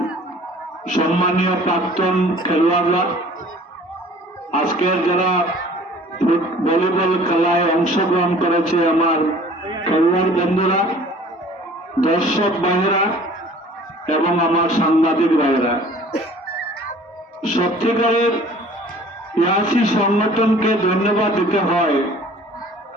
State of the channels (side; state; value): both; normal; correlation 0.49